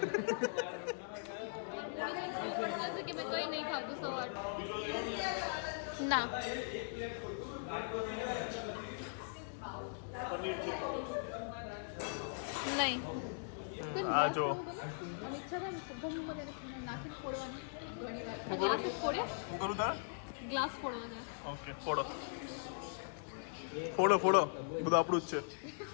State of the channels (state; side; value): silent; right; digital silence